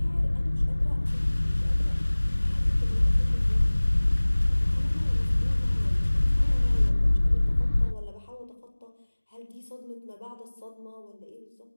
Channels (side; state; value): both; inverted; correlation -1.00